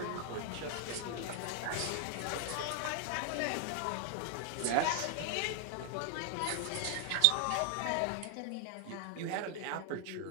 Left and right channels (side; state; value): both; different; correlation 0.00